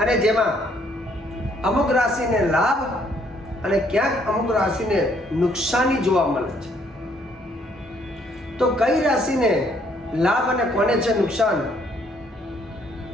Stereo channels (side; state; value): both; normal; correlation 0.67